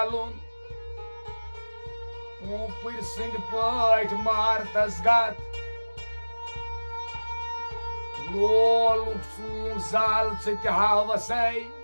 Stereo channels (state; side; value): inverted; both; correlation -1.00